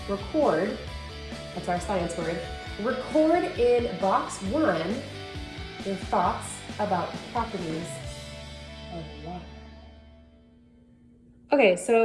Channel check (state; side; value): identical; both; correlation 1.00